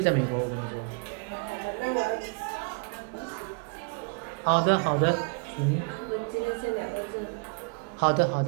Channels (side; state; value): left; quieter; 34.6 dB